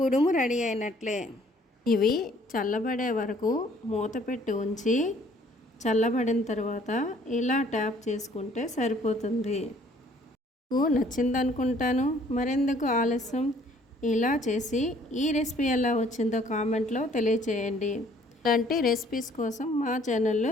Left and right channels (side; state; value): both; normal; correlation 0.59